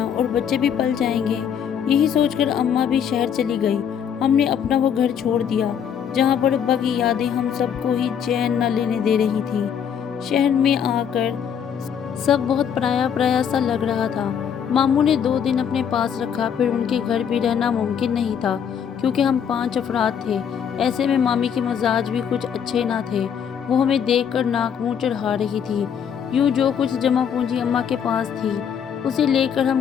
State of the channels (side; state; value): right; quieter; 8.0 dB